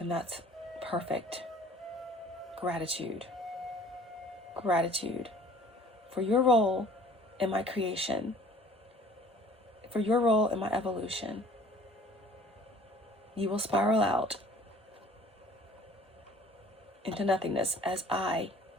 that's perfect. Gratitude. Gratitude for your role in my creation, for your role in my evolution. You will spiral out into nothingness as I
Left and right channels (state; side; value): normal; both; correlation 0.52